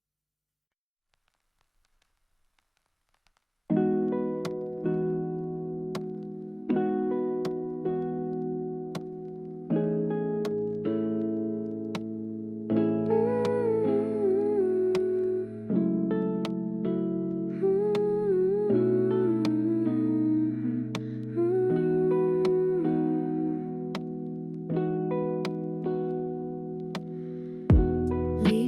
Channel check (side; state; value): both; identical; correlation 1.00